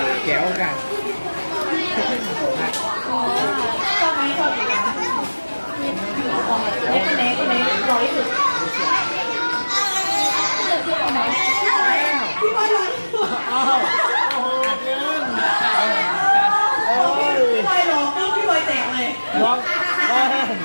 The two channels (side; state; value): both; inverted; correlation -1.00